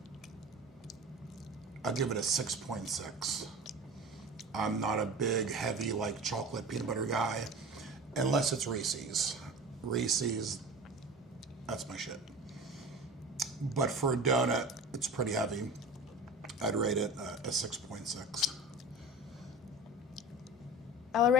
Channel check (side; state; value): both; normal; correlation 0.35